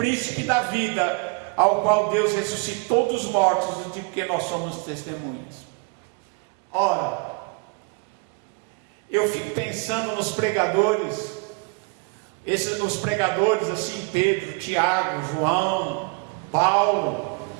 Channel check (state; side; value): quieter; left; 32.3 dB